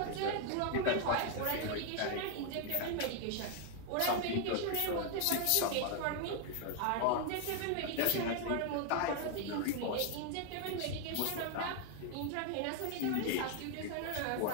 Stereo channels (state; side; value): different; both; correlation 0.00